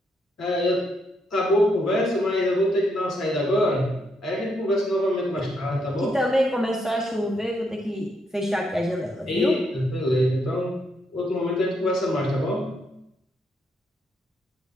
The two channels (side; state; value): both; normal; correlation 0.77